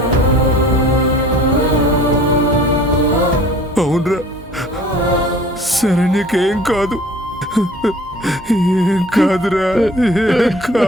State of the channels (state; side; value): normal; both; correlation 0.49